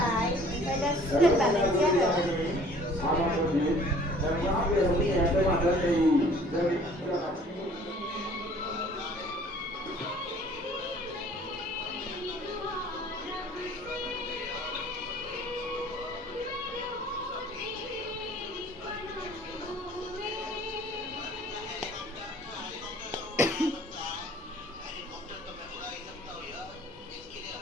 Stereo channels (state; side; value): normal; both; correlation 0.53